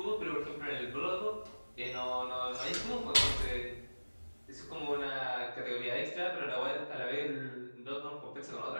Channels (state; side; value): inverted; both; correlation -1.00